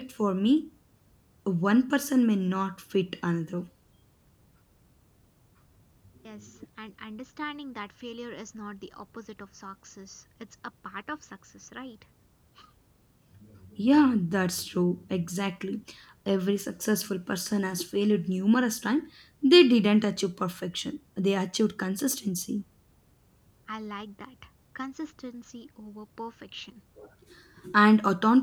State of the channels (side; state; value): both; identical; correlation 1.00